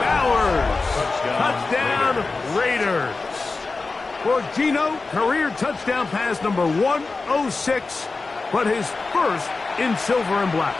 Bowers. Touchdown, Raiders. For Gino, career touchdown pass number 106, but his first in silver and black.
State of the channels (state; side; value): quieter; right; 3.8 dB